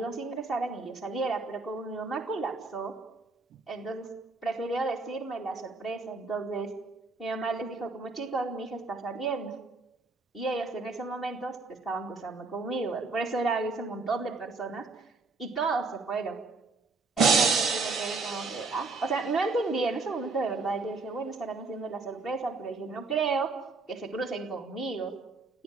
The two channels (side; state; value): left; quieter; 3.8 dB